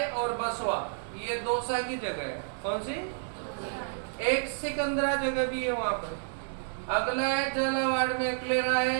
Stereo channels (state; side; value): silent; left; digital silence